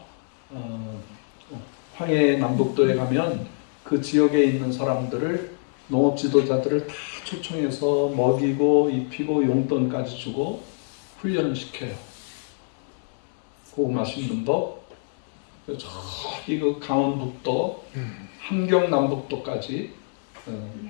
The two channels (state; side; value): silent; right; digital silence